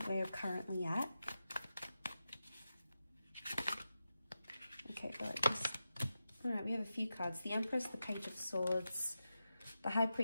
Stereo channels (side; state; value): both; inverted; correlation -0.91